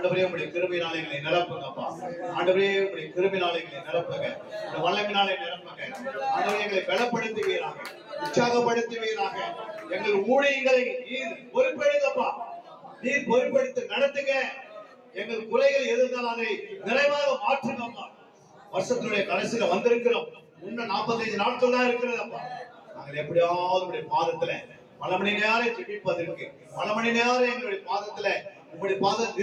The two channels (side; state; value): both; identical; correlation 1.00